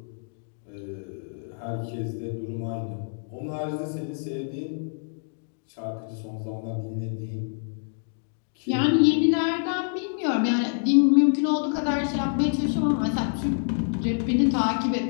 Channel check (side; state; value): right; silent; digital silence